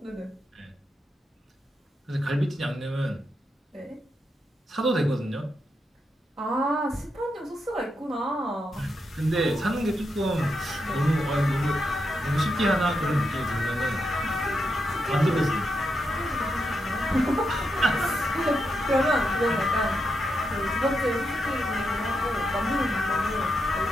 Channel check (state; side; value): normal; both; correlation 0.84